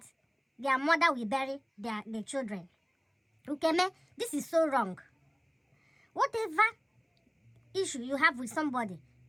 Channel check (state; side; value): identical; both; correlation 1.00